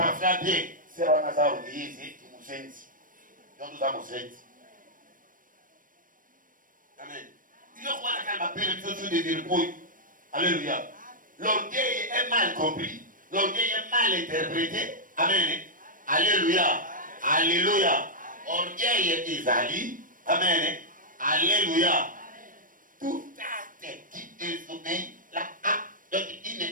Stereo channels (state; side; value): late; left; 0.40 ms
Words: bien. C'est dans la salle de Jésus, tu nous sens. Nous avons senti. Amen. Il y a quoi la calme appelle le de vergouille. Alléluia. L'orgueil est mal compris. L'orgueil est mal interprété. Amen. Alléluia. Alléluia. Orgueil est Isalie. Amen. Alléluia. Tout acte qui désobéit, une